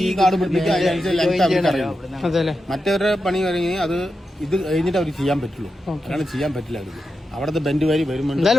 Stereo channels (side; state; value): both; normal; correlation 0.89